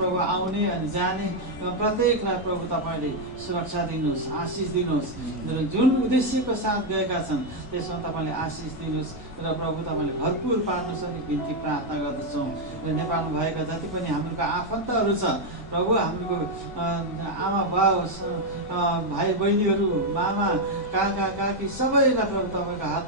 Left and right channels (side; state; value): both; normal; correlation 0.02